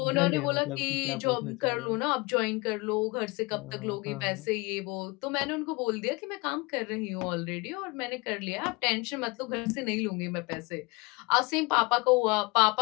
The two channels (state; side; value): quieter; right; 25.8 dB